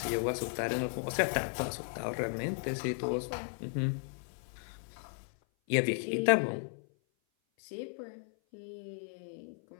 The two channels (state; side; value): silent; right; 54 dB below the other